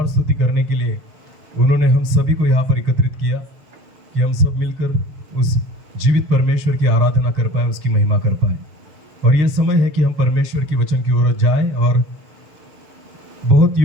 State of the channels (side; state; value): left; late; 6.6 ms